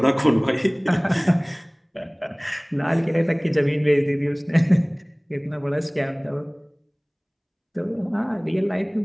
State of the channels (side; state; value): both; identical; correlation 1.00